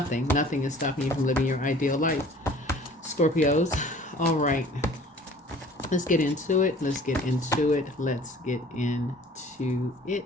Nothing is stopping you from living your ideal life. Scorpios. All right. Let's get into it. Let's get into it. Let's get into it.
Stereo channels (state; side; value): normal; both; correlation 0.49